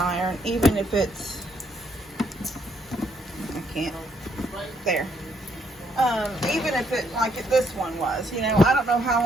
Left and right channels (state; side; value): normal; both; correlation 0.72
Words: even if it's, I can't, there. Even if it, like this one was, you know, I don't know how